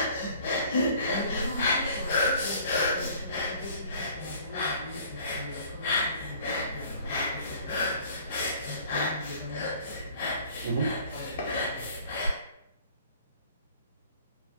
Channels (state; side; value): inverted; both; correlation -0.52